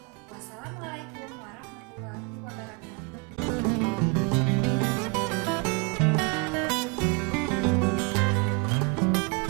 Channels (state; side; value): quieter; left; 31.4 dB